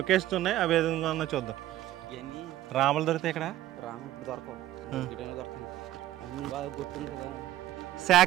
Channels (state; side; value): quieter; left; 14.1 dB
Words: ఉన్నాయి, అవి ఏ విధంగా ఉందో చూద్దాం. రాములు దొరికితే ఇక్కడ